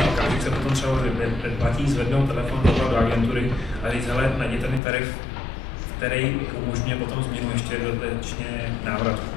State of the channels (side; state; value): right; drops out; at 4.8 s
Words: okamžik se potom třeba předplatí, zvednou telefon do agentury a říct, hele, najděte mi tarif, který umožňuje potom změnu ještě dodatečně návrat,